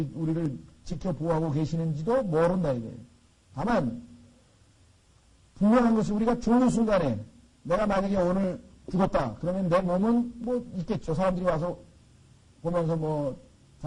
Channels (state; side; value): identical; both; correlation 1.00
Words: 지켜 보호하고 계시는지도 모른다 이거예요. 다만 분명한 것이 우리가 죽는 순간에 내가 만약에 오늘 죽었다. 그러면 내 몸은 뭐 있겠죠. 사람들이 와서 보면서 뭐라